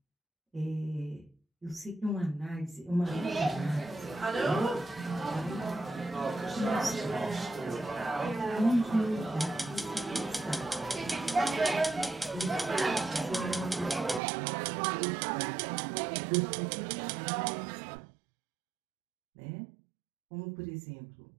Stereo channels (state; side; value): drops out; left; at 14.2 s